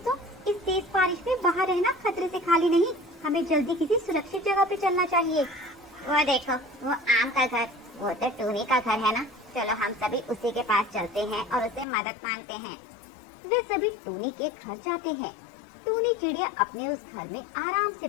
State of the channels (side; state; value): right; drops out; at 11.9 s